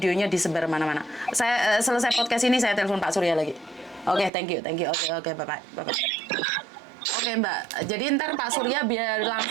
disebar mana-mana. Saya selesai podcast ini saya telepon Pak Surya lagi. Oke, thank you. Oke, bye-bye. Oke, Mbak. Jadi ntar Pak Surya biar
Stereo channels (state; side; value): drops out; left; at 4.3 s